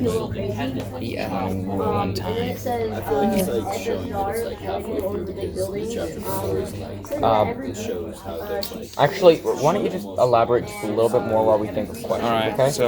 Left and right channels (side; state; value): both; identical; correlation 1.00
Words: but one time. Actually, why don't you just elaborate just a little bit more while we think of questions? Alright, okay?